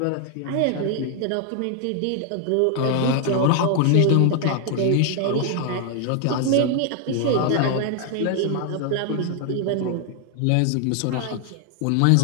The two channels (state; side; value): different; both; correlation 0.00